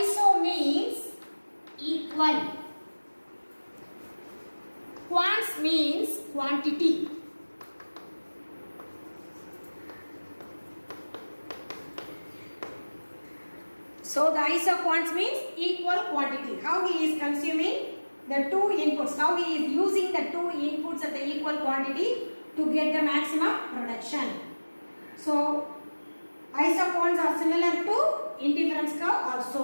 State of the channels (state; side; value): inverted; both; correlation -1.00